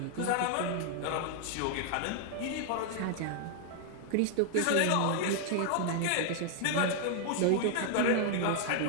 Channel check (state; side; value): different; both; correlation 0.00